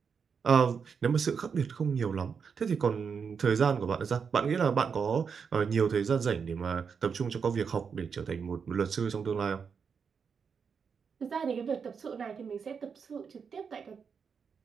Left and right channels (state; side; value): quieter; left; 6.2 dB